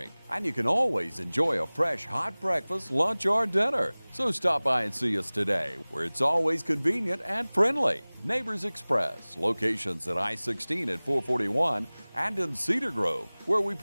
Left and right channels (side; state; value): both; inverted; correlation -1.00